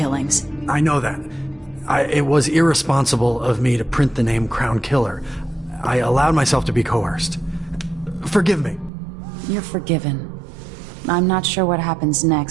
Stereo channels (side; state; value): left; drops out; at 8.9 s